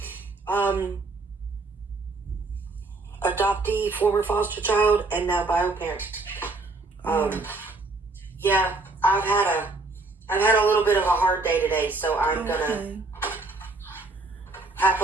adoptee, former foster child, and now bio parent. Yeah, I've had a little bit of a hard day today, so I'm gonna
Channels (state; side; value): quieter; left; 3.4 dB